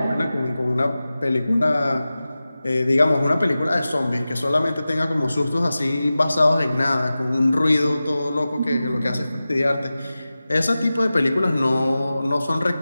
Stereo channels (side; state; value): both; inverted; correlation -0.95